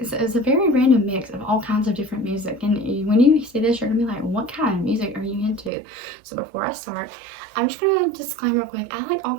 random mix of all kinds of different music. And when you see this, you're going to be like, what kind of music are you into? So before I start, I'm just going to disclaim real quick. I like all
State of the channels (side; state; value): left; drops out; at 5.7 s